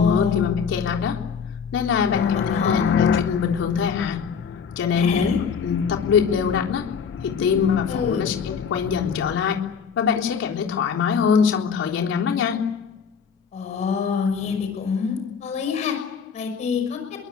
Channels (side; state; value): right; quieter; 6.5 dB